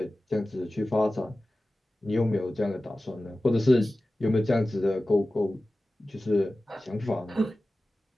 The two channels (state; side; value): normal; both; correlation 0.96